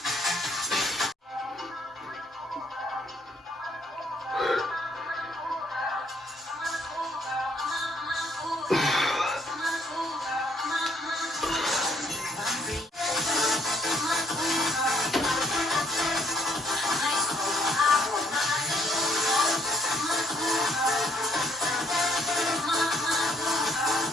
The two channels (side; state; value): both; normal; correlation 0.66